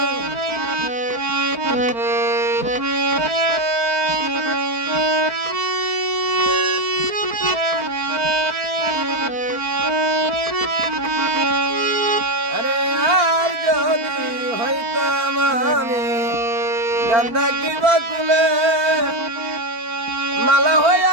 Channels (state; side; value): late; left; 4.4 ms